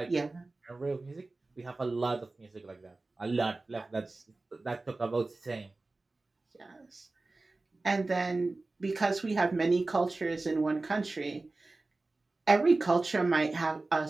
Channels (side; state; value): left; quieter; 3.3 dB